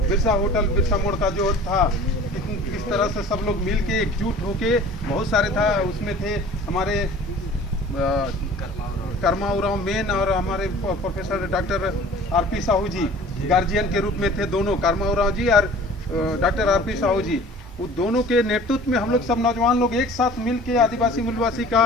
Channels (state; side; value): normal; both; correlation 0.46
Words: बिरसा होटल, बिरसा मोड़ का जो था, किस तरह से सब लोग मिल के एकजुट होके, बहुत सारे था उसमें थे हमारे कर्मा उराव मेन और हमारे प्रोफेसर डॉक्टर आरपी साहू जी गार्जियन के रूप में थे। दोनों कर्मा उराव जी और डॉक्टर आरपी साहू जी, वो दोनों के नेतृत्व में हम लोग सब नौजवान लोग एक साथ मिल के आदिवासी मूलवासी